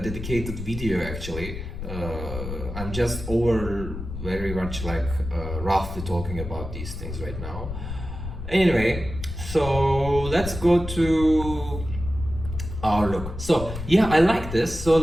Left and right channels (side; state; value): left; noise; rumble, 8 dB below the sound